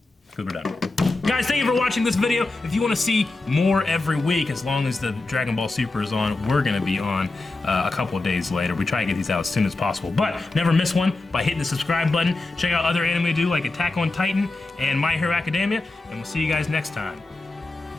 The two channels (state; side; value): quieter; right; 3.2 dB